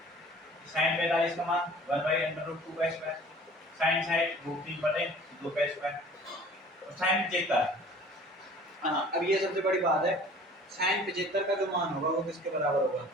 साइन 45 का मान 1/√2 का स्क्वायर साइन साइड √3/2 का स्क्वायर और साइन 75। हाँ, अब ये सबसे बड़ी बात है, साइन 75 का जो मान होगा वो किसके बराबर होगा?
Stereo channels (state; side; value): normal; both; correlation 0.48